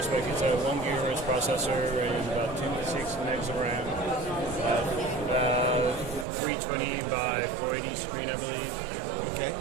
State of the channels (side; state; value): left; drops out; at 6.2 s